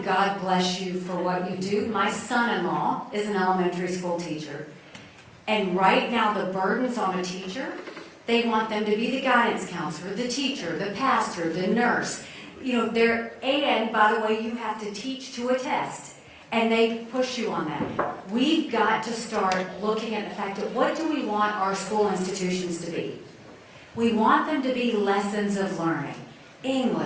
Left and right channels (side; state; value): both; identical; correlation 1.00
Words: God bless you for what you do. My son-in-law is an elementary school teacher. And right now, the burden's on a teacher. They want them to be the guidance counselor, the teacher, the pastor, the nurse. You know, and by the way, you have to teach to a test. And they push you on that. We've got to start looking at the fact that what do we want our school institutions to be? We want them to be lessons of learning.